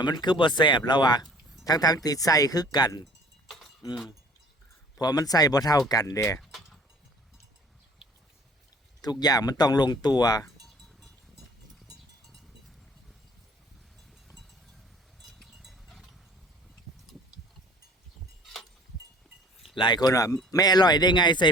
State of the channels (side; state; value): both; normal; correlation 0.50